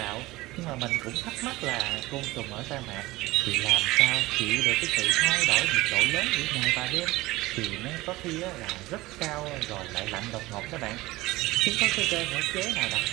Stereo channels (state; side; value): quieter; left; 19.4 dB